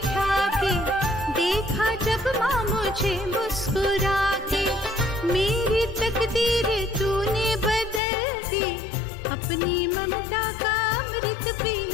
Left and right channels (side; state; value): right; drops out; at 8.0 s